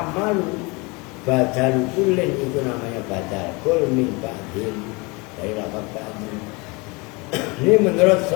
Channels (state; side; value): quieter; right; 27.3 dB